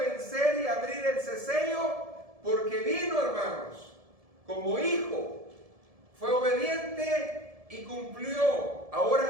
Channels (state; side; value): late; left; 1.7 ms